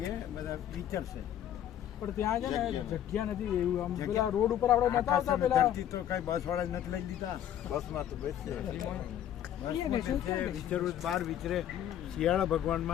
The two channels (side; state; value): right; quieter; 10.8 dB